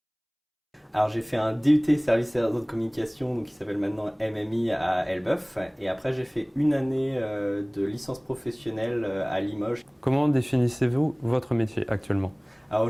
Alors j'ai fait un DUT service et réseau de communication donc qui s'appelle maintenant MMI à Elbeuf et après j'ai fait une année de licence professionnelle à Limoges. Comment définissez-vous votre métier actuellement? Alors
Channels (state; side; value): identical; both; correlation 1.00